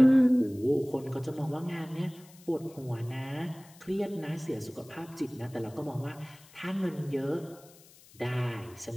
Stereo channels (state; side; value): noise; left; hiss, 24 dB below the sound